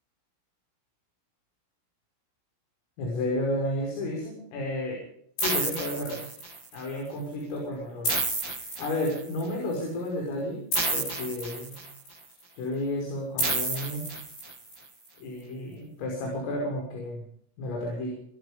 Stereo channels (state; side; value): late; right; 17 ms